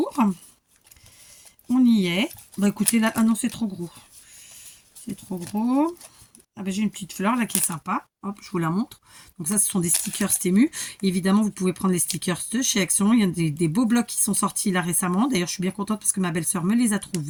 On y est. Bah écoutez, là, ah non, c'est trop gros. C'est trop gros. Ah bah, j'ai une petite fleur là qui est sympa. Hop, je vous la montre. Donc ça, ce sont des stickers Temu. Évidemment, vous pouvez prendre les stickers de chez Action. Il y a des beaux blocs qui sont sortis là récemment. D'ailleurs, je suis bien contente parce que ma belle-sœur me les a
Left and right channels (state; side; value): identical; both; correlation 1.00